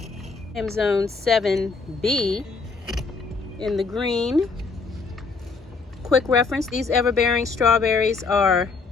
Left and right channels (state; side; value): quieter; right; 4.4 dB